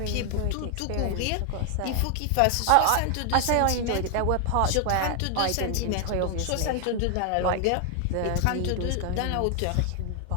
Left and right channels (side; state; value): both; different; correlation 0.00